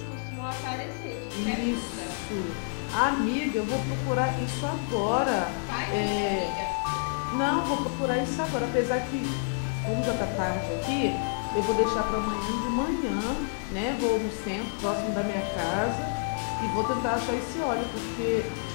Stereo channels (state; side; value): silent; right; digital silence